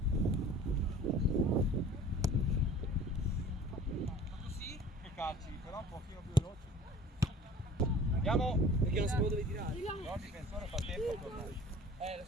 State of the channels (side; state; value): both; normal; correlation 0.45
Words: Così che calci, però un pochino più veloci. Andiamo. Perché non sapevo dove tirare. No, il difensore fa tempo a tornare.